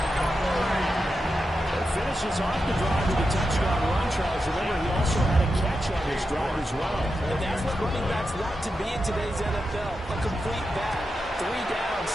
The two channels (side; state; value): both; normal; correlation 0.88